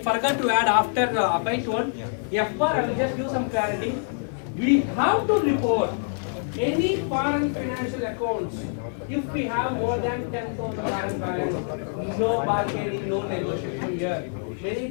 to add after Abhay told. FPAR, I will just give some clarity. We have to report any foreign financial accounts if we have more than $10,000 balance. No bargaining, no negotiation here. Many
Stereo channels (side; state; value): right; silent; digital silence